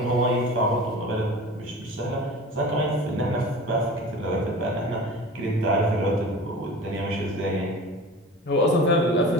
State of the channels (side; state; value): both; normal; correlation 0.36